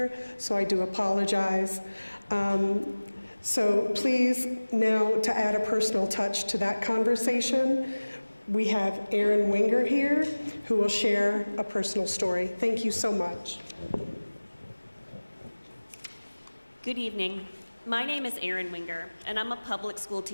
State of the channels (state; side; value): inverted; both; correlation -1.00